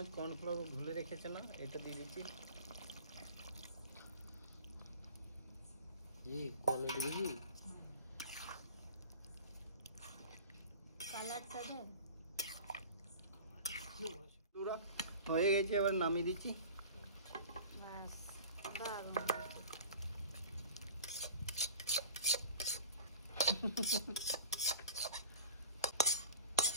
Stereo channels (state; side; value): inverted; both; correlation -0.38